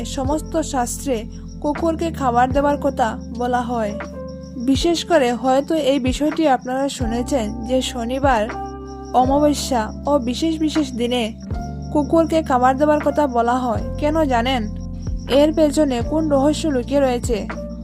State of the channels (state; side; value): identical; both; correlation 1.00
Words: সমস্ত শাস্ত্রে কুকুরকে খাবার দেওয়ার কথা বলা হয়। বিশেষ করে হয়তো এই বিষয়টি আপনারা শুনেছেন যে শনিবার, অমাবস্যা ও বিশেষ বিশেষ দিনে কুকুরকে খাবার দেওয়ার কথা বলা হয়। কেন জানেন? এর পেছনে কোন রহস্য লুকিয়ে রয়েছে?